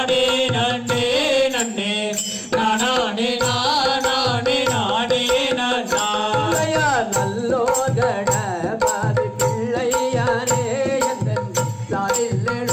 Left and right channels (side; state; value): both; identical; correlation 1.00